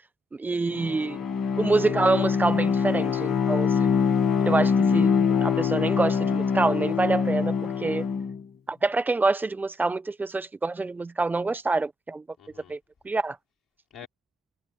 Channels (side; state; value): both; normal; correlation 0.77